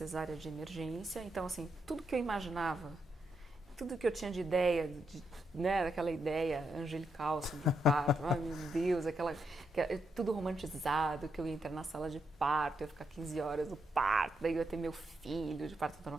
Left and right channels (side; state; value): both; normal; correlation 0.81